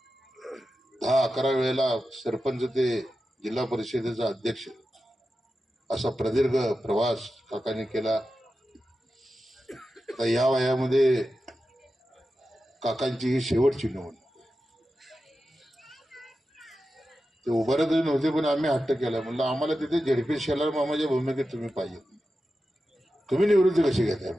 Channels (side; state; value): both; normal; correlation 0.92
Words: 10-11 वेळेला सरपंच ते जिल्हा परिषदेचा अध्यक्ष असा प्रदीर्घ प्रवास काकांनी केला. आता या वयामध्ये काकांची ही शेवटची निवडणूक. ते उभारत नव्हते पण आम्ही हट्ट केला, म्हणलं आम्हाला तिथे झेडपी शेलार मामाच्या भूमिकेत तुम्ही पाहिजे, तुम्ही निवृत्ती कशी घेताय